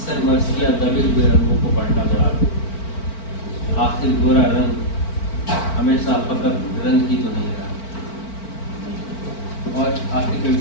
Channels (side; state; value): right; late; 4.4 ms